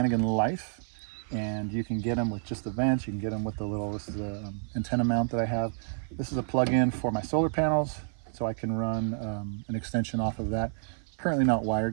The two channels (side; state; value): left; silent; 55 dB below the other